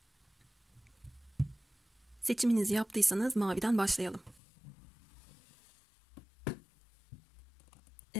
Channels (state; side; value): drops out; right; at 4.4 s